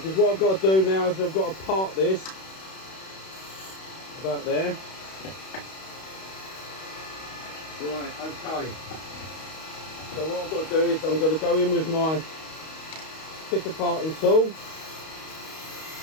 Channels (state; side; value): late; right; 31 ms